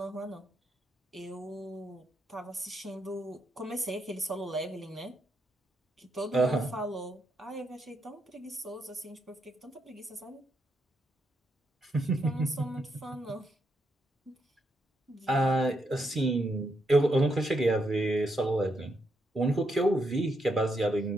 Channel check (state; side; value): normal; both; correlation 0.80